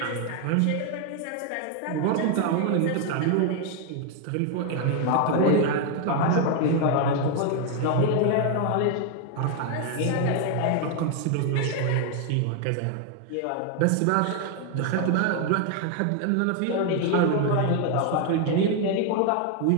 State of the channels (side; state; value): both; different; correlation 0.01